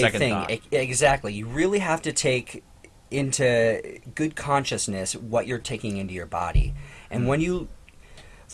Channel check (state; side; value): identical; both; correlation 1.00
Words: Second thing. thought. Exactly. You really have to take into good consciousness what you're taking into your body. And when you